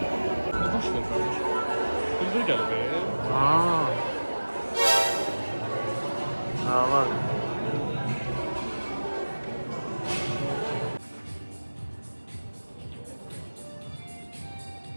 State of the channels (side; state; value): both; inverted; correlation -1.00